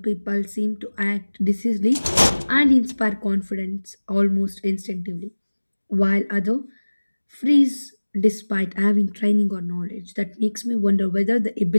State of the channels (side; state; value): both; inverted; correlation -1.00